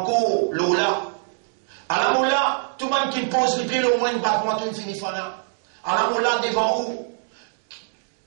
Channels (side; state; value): left; silent; 63 dB below the other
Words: l'Ola? À la moula, tout le monde qui pose les pieds, au moins une batte, moi, tout finit fana. À la moula, devant où?